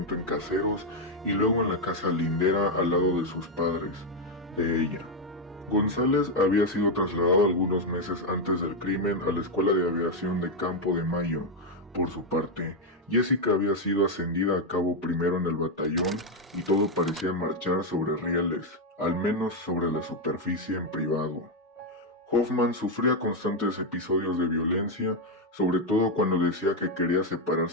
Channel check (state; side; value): normal; both; correlation 0.03